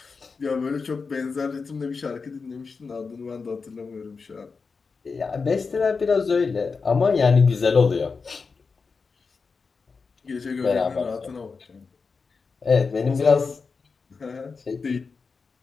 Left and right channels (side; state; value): right; quieter; 4.8 dB